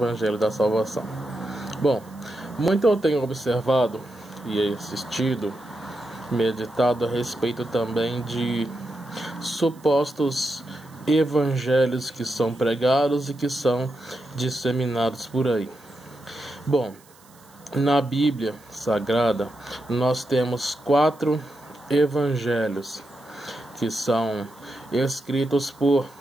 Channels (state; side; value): noise; right; hiss, 27 dB below the sound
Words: da Salvação. Bom, muito eu tenho observado e assistido, meditado a respeito também de supostos evangelhos que são pregados e que são disseminados por aí. Bom, na Bíblia Sagrada nós temos 4 evangelhos que são escritos por